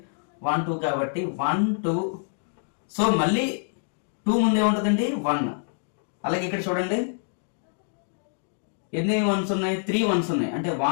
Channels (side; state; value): right; silent; digital silence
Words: 1 2 కాబట్టి 1 2. సో మళ్ళీ 2 ముందే ఉంటుందండి 1. అలాగే ఇక్కడ చూడండి ఎన్ని వన్స్ ఉన్నాయి? 3 వన్స్ ఉన్నాయి, అంటే